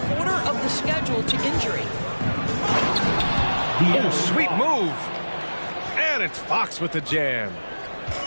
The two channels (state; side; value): inverted; both; correlation -1.00